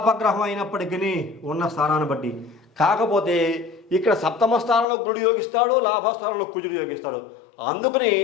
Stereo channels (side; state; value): right; drops out; at 4.9 s